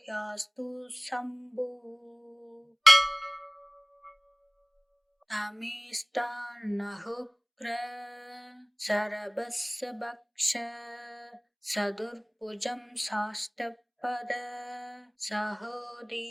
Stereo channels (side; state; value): both; identical; correlation 1.00